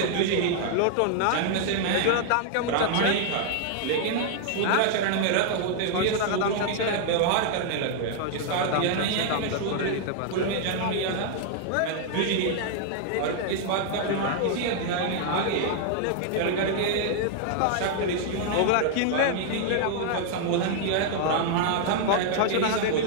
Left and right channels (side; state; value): both; different; correlation 0.00